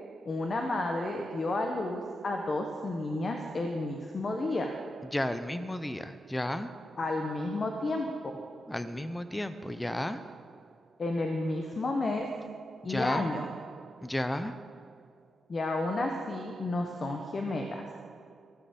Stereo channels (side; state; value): both; normal; correlation 0.89